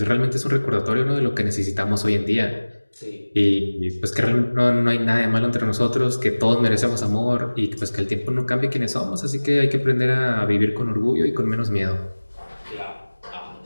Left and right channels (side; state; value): both; inverted; correlation -1.00